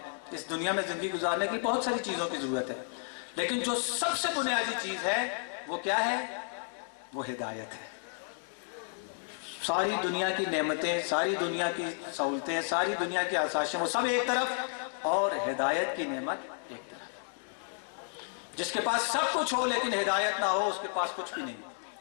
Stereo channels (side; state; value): right; silent; 56 dB below the other